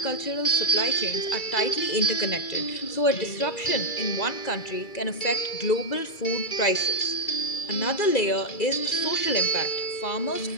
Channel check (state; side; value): late; right; 2.3 ms